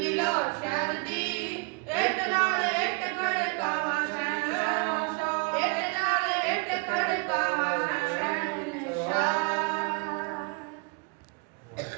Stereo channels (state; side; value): quieter; left; 31.2 dB